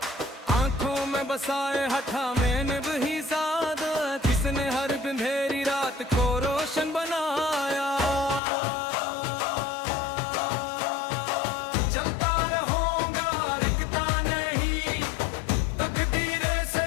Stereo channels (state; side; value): drops out; right; at 8.4 s